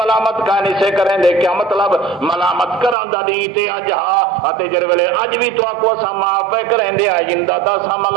ملامت کا نہیں سے کریں دے، کیا مطلب ملامت کران دا دی تے اج ہا اتے جڑے ویلے اج بھی تو آکو اساں معاف پے کریں دے، آئندہ دا اساں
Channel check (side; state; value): left; drops out; at 3.0 s